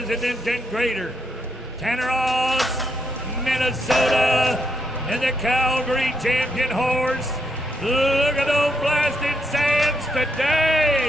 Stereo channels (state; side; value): normal; both; correlation 0.77